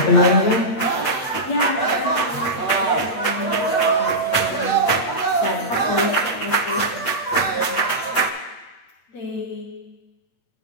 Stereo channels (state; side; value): late; right; 8.7 ms